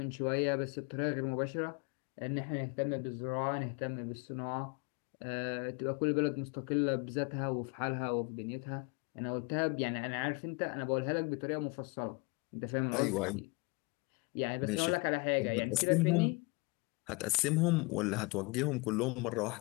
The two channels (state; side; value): quieter; right; 28.3 dB